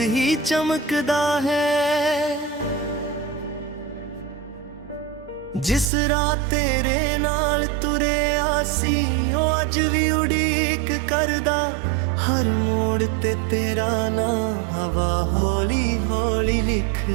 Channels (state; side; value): drops out; left; at 5.9 s